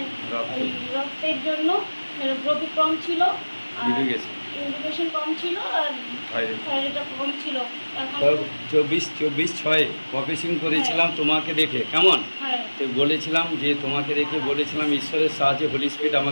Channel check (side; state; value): both; inverted; correlation -1.00